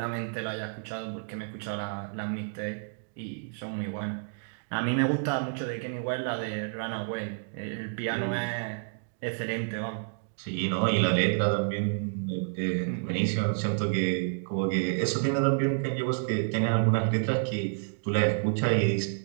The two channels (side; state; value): left; silent; digital silence